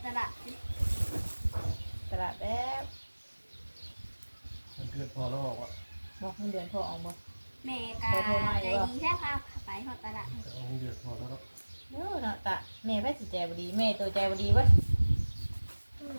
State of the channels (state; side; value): inverted; both; correlation -1.00